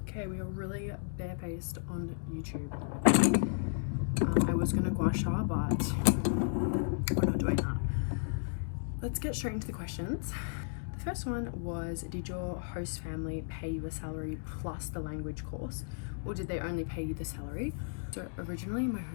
we are really barefaced on YouTube. I was gonna gua sha, but we're not doing that. Let's get straight into the questions. The first one was, did your host family pay you a salary plus the language course, or did they only pay you the salary? So originally my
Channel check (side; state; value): right; silent; digital silence